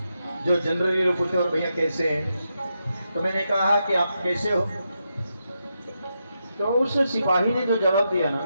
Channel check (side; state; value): both; inverted; correlation -0.85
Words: जो जनरली लोग पूछते, और भैया कैसे हैं? तो मैंने कहा कि आप कैसे हो? तो उस सिपाही ने जो जवाब दिया ना,